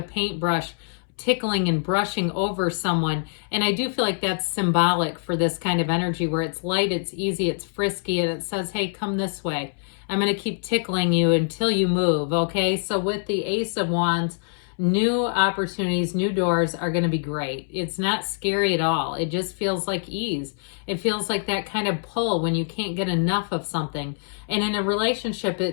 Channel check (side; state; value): right; silent; 62 dB below the other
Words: paintbrush tickling and brushing over someone. And I do feel like that's symbolic for this kind of energy where it's light, it's easy, it's frisky, and it says, hey, come this way. I'm going to keep tickling you until you move, okay? So with the Ace of Wands, new opportunities, new doors are going to be great. It's not scary at all. It just feels like ease. It feels like that kind of pull when you can't get enough of something. And in a relationship,